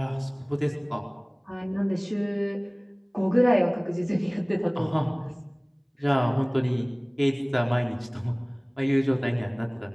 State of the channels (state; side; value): identical; both; correlation 1.00